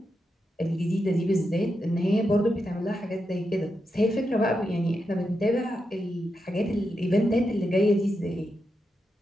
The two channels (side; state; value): both; normal; correlation 0.86